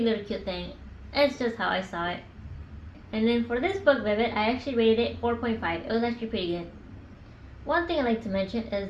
cute thing. It's just how I saw it. And then for this book, Vivid, I actually rated it 4.5. It was actually pretty good. One thing I'd like to mention is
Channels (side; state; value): both; identical; correlation 1.00